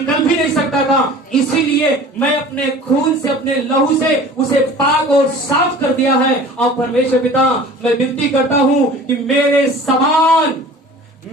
भी नहीं सकता था। इसीलिए मैं अपने खून से, अपने लहू से उसे पाक और साफ कर दिया है। और परमेश्वर पिता, मैं विनती करता हूं कि मेरे समान,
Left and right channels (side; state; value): both; normal; correlation 0.43